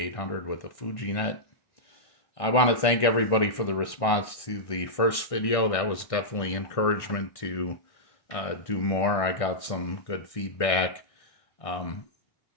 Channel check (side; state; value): right; late; 1.6 ms